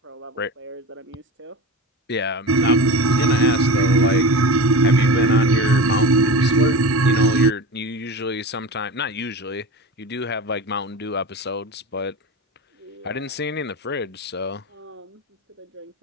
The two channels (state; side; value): normal; both; correlation 0.28